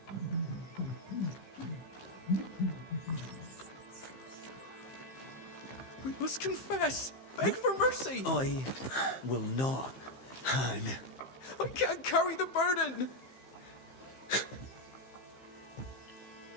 We must confess! Beg for mercy! I will not, Han. I can't carry the burden!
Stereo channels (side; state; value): right; late; 15 ms